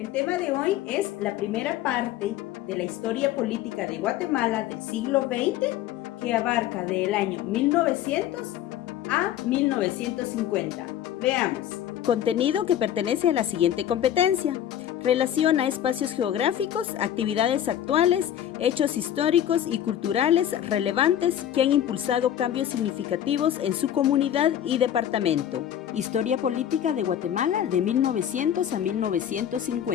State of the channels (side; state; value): right; quieter; 10.8 dB